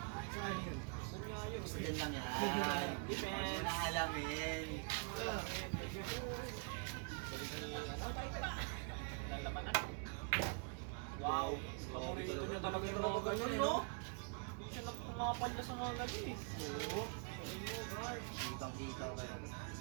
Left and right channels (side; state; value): left; quieter; 39.8 dB